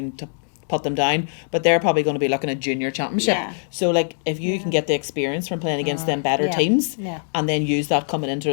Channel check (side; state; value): right; silent; digital silence